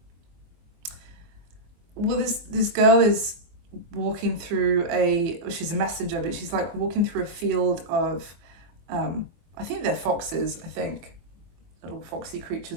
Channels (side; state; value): left; late; 24 ms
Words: well, this girl is walking through she's a messenger, but she's like walking through a field of, I think they're foxes, I think, little foxy